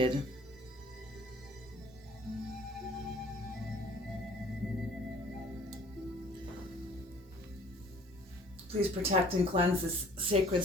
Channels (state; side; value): normal; both; correlation 0.54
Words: Please protect and cleanse this sacred